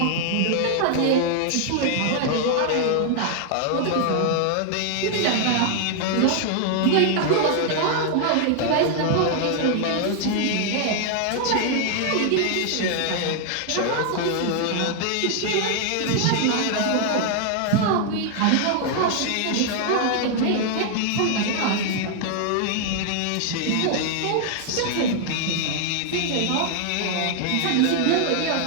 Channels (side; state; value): both; different; correlation 0.00